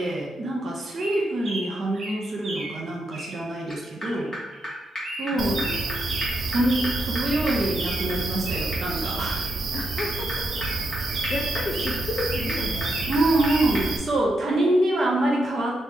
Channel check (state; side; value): normal; both; correlation 0.82